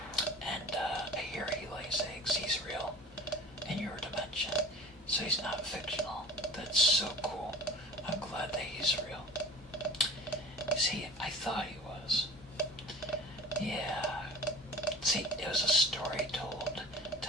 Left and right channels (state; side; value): normal; both; correlation 0.42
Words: And I hear he lays eggs. He's real in your dimension, so he's not fictional. That's so cool. I'm glad that he's real. See, I thought he was. Yeah. See, it was a story told